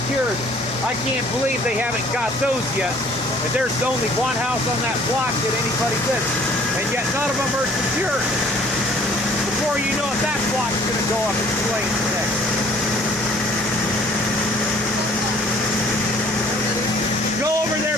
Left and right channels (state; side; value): normal; both; correlation 0.56